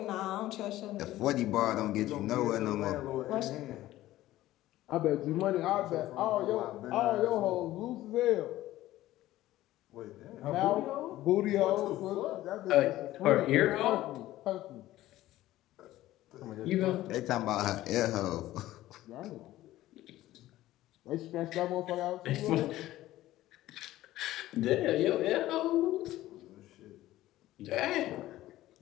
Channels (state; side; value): quieter; right; 15.4 dB